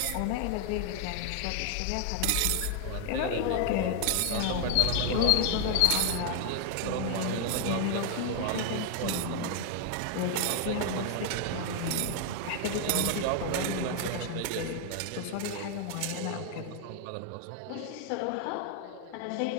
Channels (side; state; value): both; different; correlation 0.00